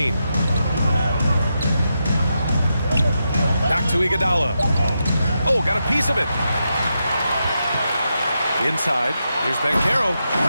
Back to Iguodala. Oh, got a piece of it. Inside, here's Banchero.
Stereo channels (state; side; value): inverted; both; correlation -0.86